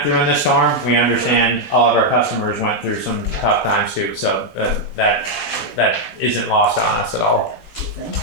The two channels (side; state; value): right; late; 13 ms